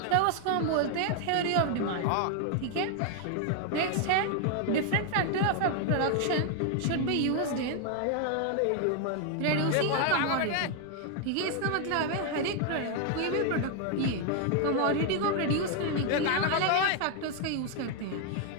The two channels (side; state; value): both; different; correlation 0.00